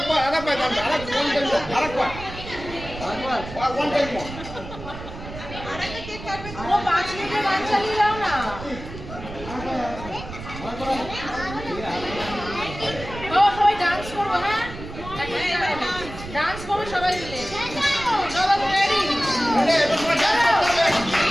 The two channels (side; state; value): right; noise; rumble, 12 dB below the sound